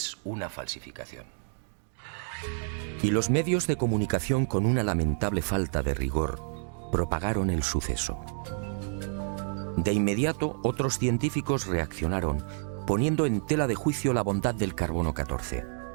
una falsificación. Y los medios de comunicación, con una lamentable falta de rigor, propagaron el suceso. De inmediato, otros científicos reaccionaron, poniendo en tela de juicio la bondad del carbono 14.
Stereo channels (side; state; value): left; silent; digital silence